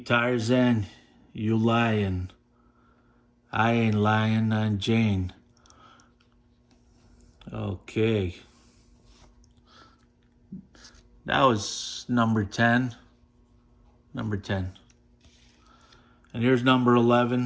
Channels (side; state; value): both; identical; correlation 1.00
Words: you lying. I ain't lying, I'm Jane. Okay. That was number 10. Number 10. And here's number